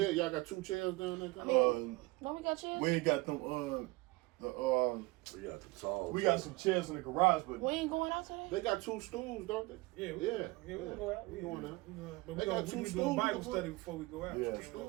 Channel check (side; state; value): left; quieter; 22.7 dB